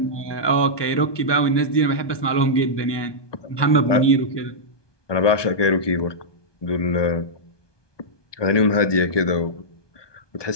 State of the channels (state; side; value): late; right; 1.2 ms